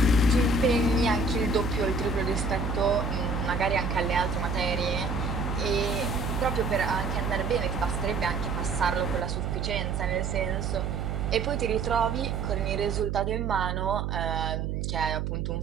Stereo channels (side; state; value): right; noise; hum, 2 dB below the sound